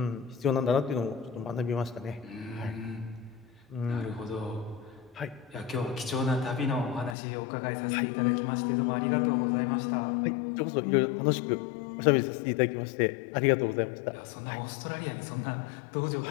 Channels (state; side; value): drops out; right; at 7.2 s